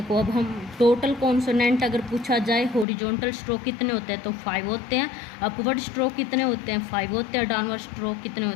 अब हम टोटल कॉन्सोनेंट अगर पूछा जाए हॉरिजॉन्टल स्ट्रोक कितने होते हैं तो 5 होते हैं। अपवर्ड स्ट्रोक कितने होते हैं 5 होते हैं। डाउनवर्ड स्ट्रोक कितने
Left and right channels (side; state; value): right; drops out; at 2.9 s